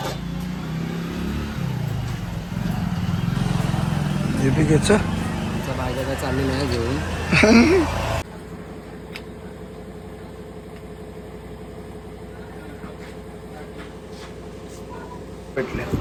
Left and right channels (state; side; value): identical; both; correlation 1.00